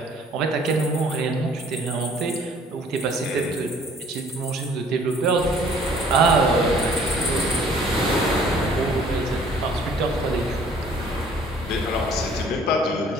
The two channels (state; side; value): normal; both; correlation 0.55